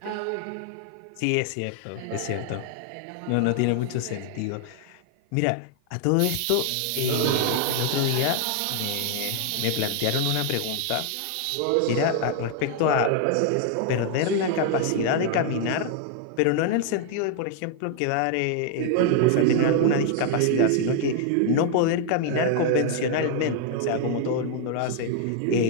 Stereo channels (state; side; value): different; both; correlation 0.00